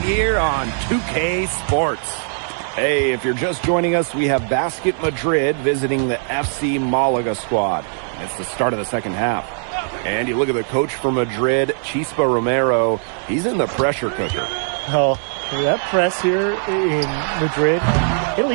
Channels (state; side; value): silent; left; 66 dB below the other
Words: here on 2K Sports. Hey, if you're just joining us, we have Basket Madrid visiting the FC Malaga squad. It's the start of the second half. And you look at the coach for Madrid, Chispa Romero. He's in the pressure cooker. Oh, that press here in Madrid, it'll